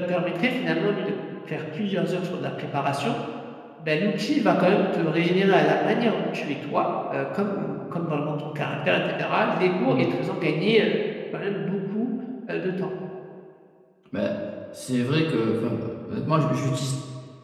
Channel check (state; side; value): identical; both; correlation 1.00